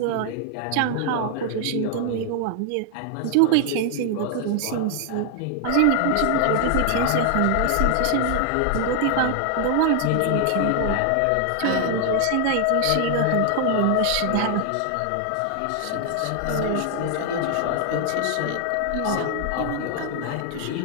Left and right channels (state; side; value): different; both; correlation 0.00